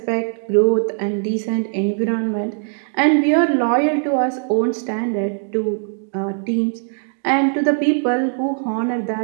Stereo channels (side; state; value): left; silent; digital silence